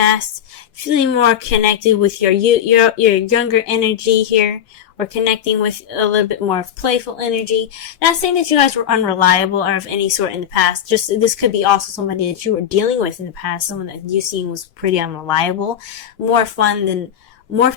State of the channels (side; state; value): right; quieter; 9.5 dB